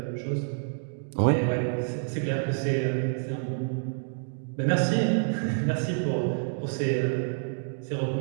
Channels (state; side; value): silent; left; digital silence